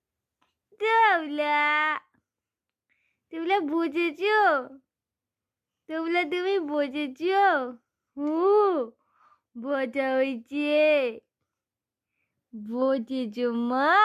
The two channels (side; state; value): both; identical; correlation 1.00